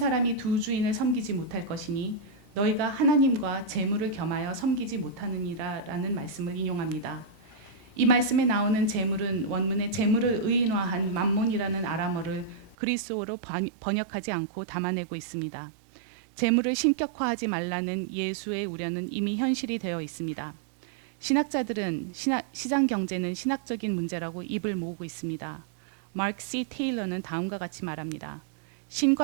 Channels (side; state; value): left; drops out; at 12.8 s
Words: 두 주인을 섬기지 못할 것이니 너희가 하나님과 재물을 겸하여 섬기지 못하느니라 라는 말씀을 인용합니다. 이 말씀에 나오는 재물은 원문에 재물을 의인화한 맘몬이라는 아람어를 그리스어로 번역하지 않고 담아내고 있습니다. 재물을 신격화하지 말라는 예수의 우려는 이미 현실이 되어 있습니다. 신학자들은 시장 경제는 신학적인 문제라고 입을 모으고 있습니다. 마크 C. 테일러는 다음과 같이 말합니다.